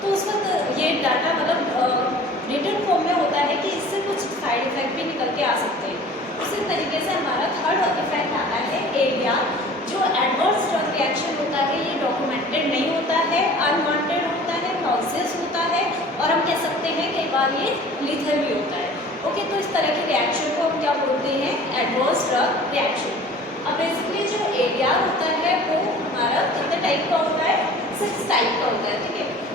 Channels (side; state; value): both; normal; correlation 0.45